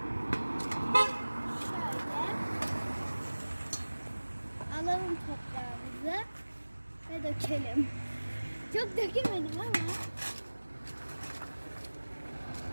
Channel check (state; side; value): inverted; both; correlation -1.00